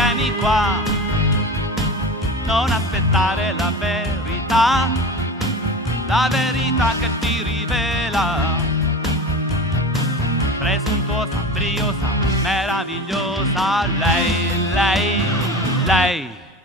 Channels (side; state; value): both; normal; correlation 0.31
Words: qua, non aspettare la verità che ti rivela. Presuntuosa, briosa, meravigliosa. Lei.